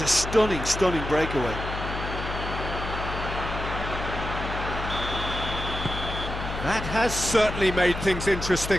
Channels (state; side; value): noise; left; hum, 6 dB below the sound